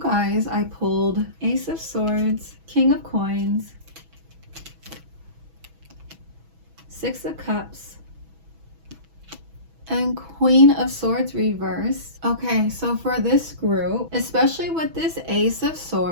I pulled Ace of Swords, King of Coins, Six of Cups, and Queen of Swords reverse. Okay, so for this group, especially with this Ace of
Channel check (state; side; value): late; left; 6.1 ms